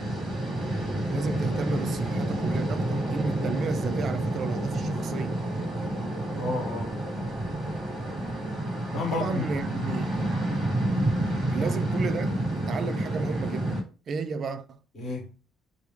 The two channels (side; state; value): both; normal; correlation 0.81